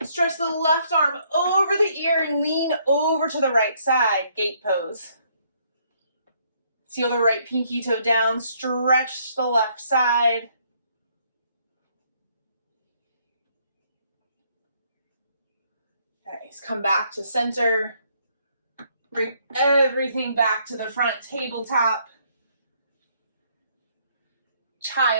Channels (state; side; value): inverted; both; correlation -0.68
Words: Stretch the left arm over the ear and lean over to the right side. Gate pose. Seal the right pinky toe down. Stretch the left side. Nice. Come back to center. Bring everything back to the front. Tabletop.